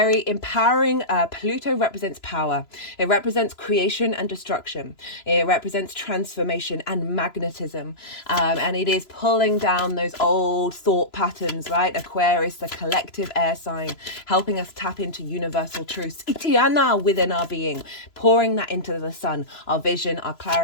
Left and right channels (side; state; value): right; late; 3.0 ms